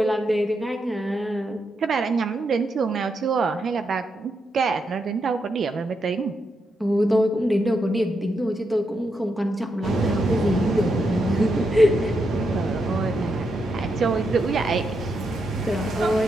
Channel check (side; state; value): both; normal; correlation 0.82